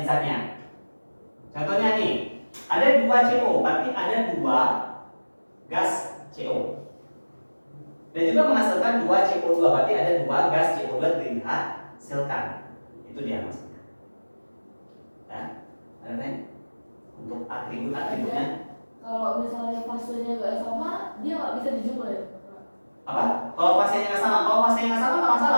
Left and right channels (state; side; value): inverted; both; correlation -1.00